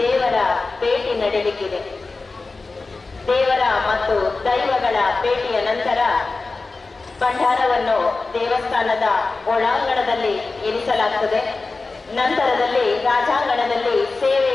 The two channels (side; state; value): right; quieter; 3.8 dB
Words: ದೇವರ ಭೇಟಿ ನಡೆಯಲಿಕ್ಕಿದೆ. ದೇವರ ಮತ್ತು ದೈವಗಳ ಭೇಟಿಯ ನಂತರ ಭಂಡಾರವನ್ನು ದೇವಸ್ಥಾನದ ಒಳಾಂಗಣದಲ್ಲಿ ಇರಿಸಲಾಗುತ್ತದೆ. ನಂತರದಲ್ಲಿ ರಾಜಾಂಗಣದಲ್ಲಿ